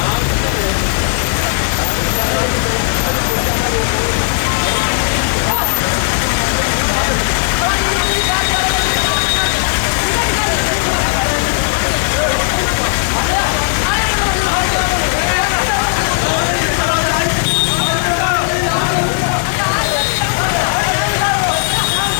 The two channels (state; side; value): silent; right; digital silence